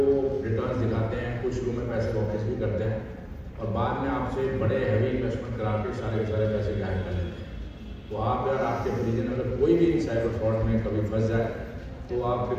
रिटर्न दिखाते हैं, कुछ शुरू में पैसे वापस भी करते हैं और बाद में आपसे बड़े हैवी इन्वेस्टमेंट करा के सारे के सारे पैसे गायब कर लेते हैं। तो आप अगर आपके परिजन अगर कोई भी साइबर फ्रॉड में कभी फंस जाए तो आप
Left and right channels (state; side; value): identical; both; correlation 1.00